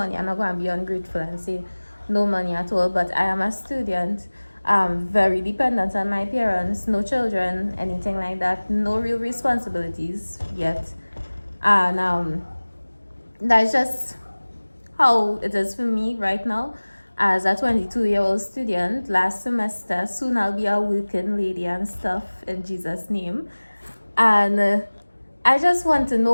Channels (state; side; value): inverted; both; correlation -1.00